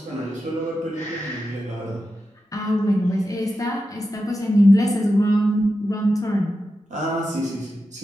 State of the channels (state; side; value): normal; both; correlation 0.90